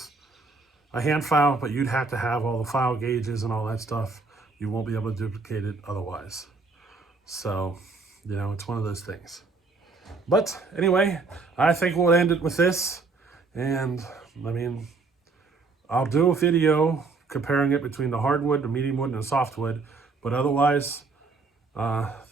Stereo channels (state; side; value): quieter; left; 4.0 dB